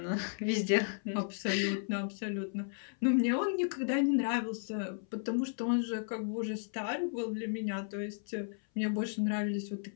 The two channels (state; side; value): silent; right; 55 dB below the other